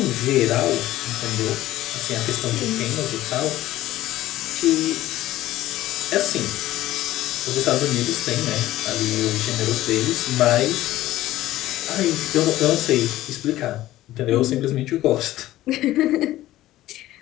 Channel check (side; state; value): right; quieter; 15.3 dB